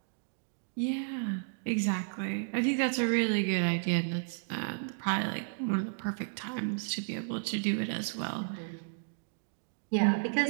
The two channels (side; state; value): left; silent; digital silence